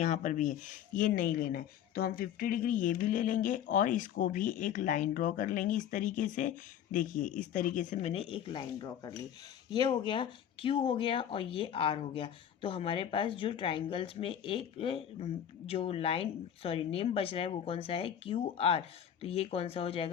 पर भी है, ये नहीं लेना है। तो हम 50 डिग्री ये भी ले लेंगे और इसको भी एक लाइन ड्रॉ कर लेंगे इस तरीके से। देखिए इस तरीके से मैंने एक लाइन ड्रॉ कर ली। ये हो गया, क्यू हो गया और ये आर हो गया। तो हमारे पास जो ट्राइंगल्स में एक जो नेम बच रहा है वो कौन सा है, क्यू आर। तो ये कौन सा हो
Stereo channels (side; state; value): right; quieter; 9.7 dB